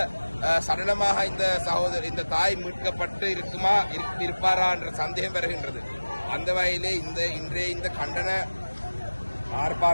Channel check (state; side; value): inverted; both; correlation -1.00